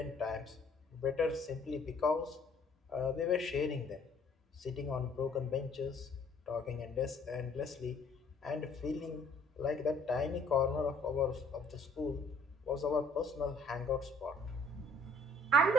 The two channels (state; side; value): normal; both; correlation 0.59